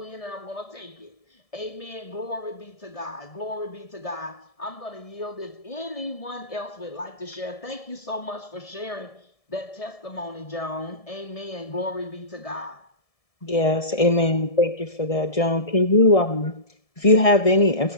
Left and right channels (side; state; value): right; late; 1.7 ms